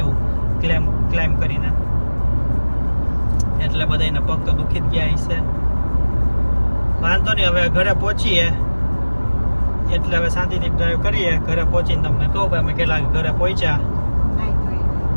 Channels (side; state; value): both; inverted; correlation -1.00